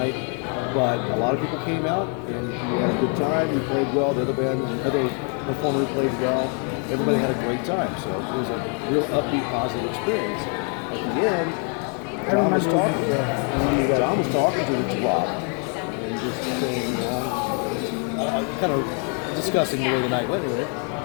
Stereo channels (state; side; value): quieter; right; 40.0 dB